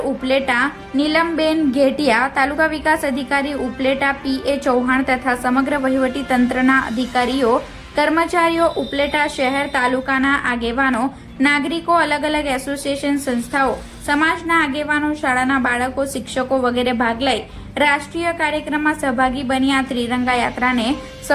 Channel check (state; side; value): identical; both; correlation 1.00